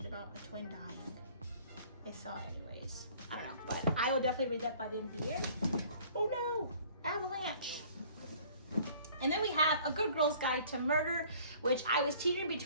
about a twin dying. I saw it anyways. I don't know, but I will definitely read that by the end of the year. Oh no, avalanche. And then we have A Good Girl's Guide to Murder, which I was teetering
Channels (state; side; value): inverted; both; correlation -0.53